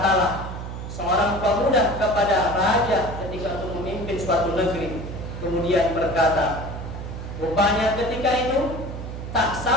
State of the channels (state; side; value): noise; right; hum, 8 dB below the sound